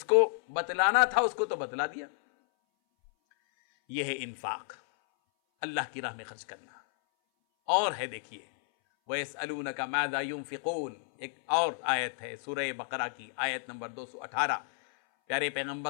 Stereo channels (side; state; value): right; silent; 57 dB below the other